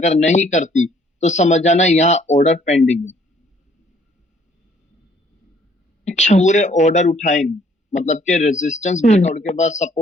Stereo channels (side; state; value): both; normal; correlation 0.62